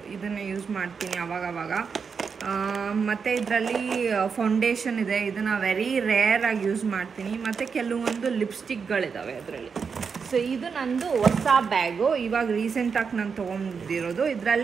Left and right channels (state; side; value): quieter; left; 5.8 dB